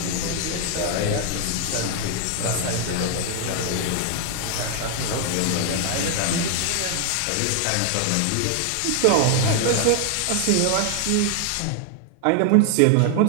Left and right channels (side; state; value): both; different; correlation 0.00